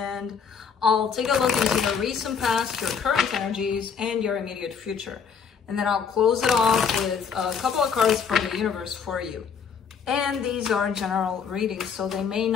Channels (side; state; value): right; quieter; 6.5 dB